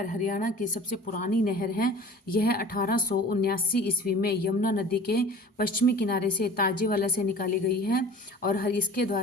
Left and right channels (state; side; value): normal; both; correlation 0.42